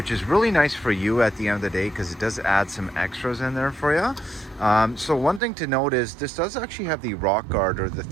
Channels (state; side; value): drops out; left; at 5.4 s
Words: is really nice for you at the end of the day because it does add some extras in there for you. So one thing to note is this does actually have the rock guard, or the